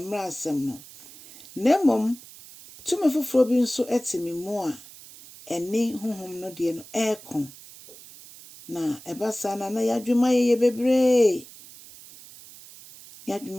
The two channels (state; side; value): noise; right; hiss, 19 dB below the sound